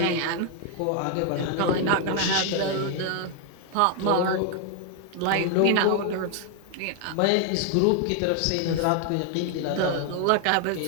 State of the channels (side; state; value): both; different; correlation 0.00